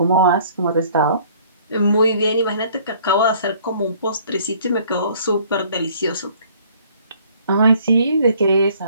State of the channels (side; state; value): both; inverted; correlation -0.57